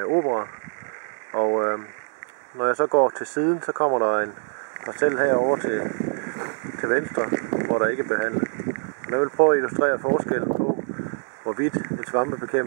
Obra. Og når jeg så går til siden, så kommer der en parcel herover til venstre, hvor der ikke er behandlet. Og jeg vil prøve at illustrere forskellen på, hvorvidt en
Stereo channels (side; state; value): left; silent; 58 dB below the other